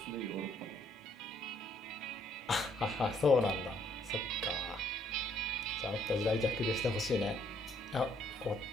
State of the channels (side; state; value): both; normal; correlation 0.67